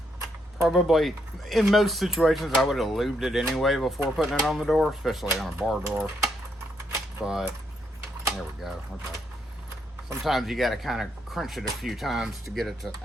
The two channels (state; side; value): normal; both; correlation 0.76